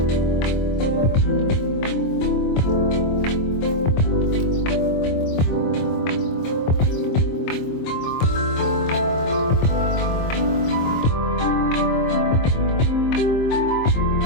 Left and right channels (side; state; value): right; late; 23 ms